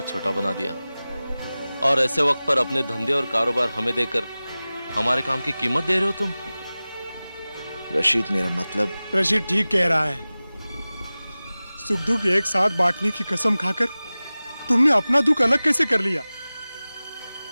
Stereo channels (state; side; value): inverted; both; correlation -0.98